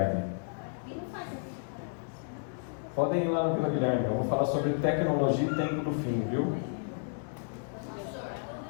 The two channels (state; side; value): silent; right; digital silence